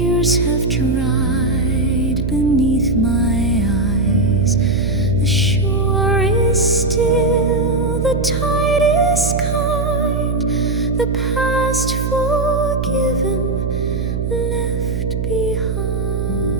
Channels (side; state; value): right; noise; hum, 1 dB below the sound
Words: have dried beneath my eyes. The shore is still, the tide is kind, the past forgiven, left behind.